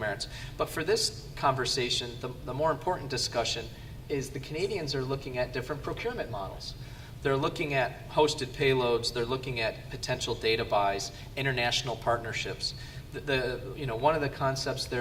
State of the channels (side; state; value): both; identical; correlation 1.00